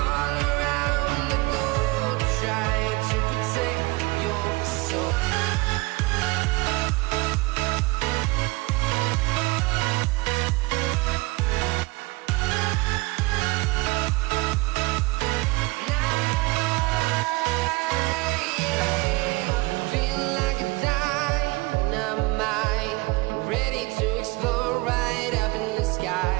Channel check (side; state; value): left; quieter; 23.4 dB